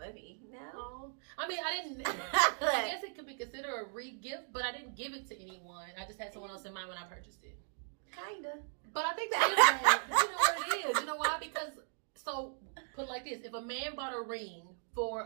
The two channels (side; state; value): left; silent; 53 dB below the other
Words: No. I mean, I guess it could be considered a re-gift, but I didn't give it to anyone. I just had someone else in mind when I purchased it. Kinda. But I think that is bad. You know what it is? You know why? Because, so, put it like this. If a man bought a ring